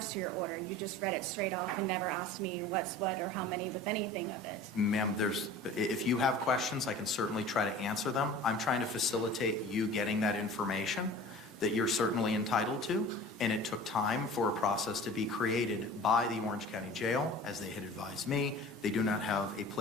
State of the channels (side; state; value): both; normal; correlation 0.41